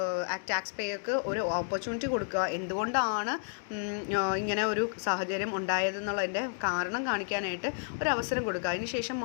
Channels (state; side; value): silent; right; digital silence